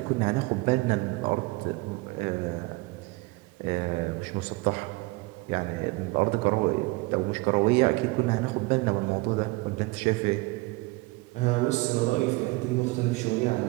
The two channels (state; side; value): quieter; left; 23.4 dB